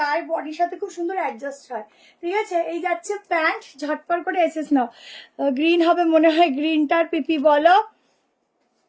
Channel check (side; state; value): both; identical; correlation 1.00